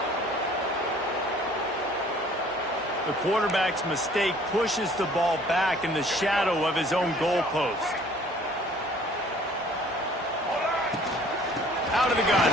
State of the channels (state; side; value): noise; right; hum, 27 dB below the sound